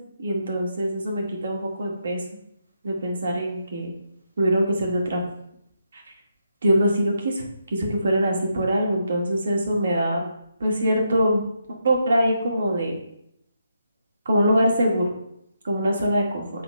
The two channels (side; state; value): both; inverted; correlation -0.81